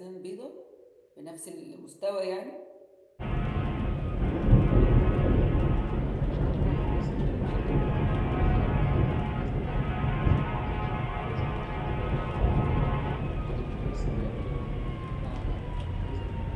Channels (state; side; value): identical; both; correlation 1.00